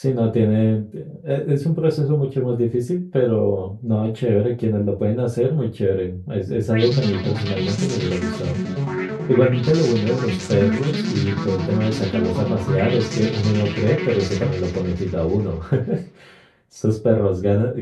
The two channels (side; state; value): both; identical; correlation 1.00